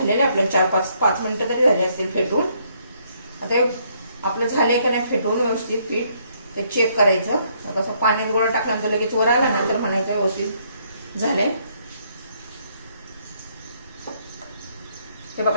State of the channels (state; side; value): inverted; both; correlation -0.70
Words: आपल्याला 4-5 मिनिटं तरी झाले असतील फेटून. आता आपलं झालंय का नाही फेटून व्यवस्थित पीठ ते चेक करायचं. कसं पाण्यात गोळा टाकल्यानंतर लगेच वर आला ना तर म्हणायचं व्यवस्थित झालंय. हे